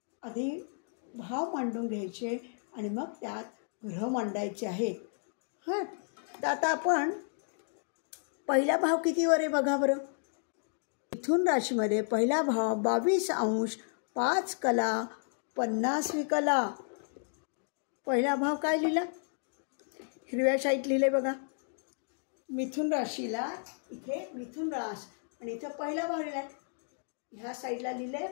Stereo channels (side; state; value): right; silent; digital silence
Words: आधी भाव मांडून घ्यायचे आणि मग त्यात ग्रह मांडायचे आहेत. हां, तर आता आपण पहिला भाव कितीवर आहे बघा बरं. मिथुन राशीमध्ये पहिला भाव 22 अंश 5 कला 50 विकला. पहिला भाव काय लिहिला, हिरव्या शाईत लिहिले बघा. मिथुन राशीला इथे मिथुन रास आणि इथं पहिला भाव लिहिला. ह्या साईडला लिहिले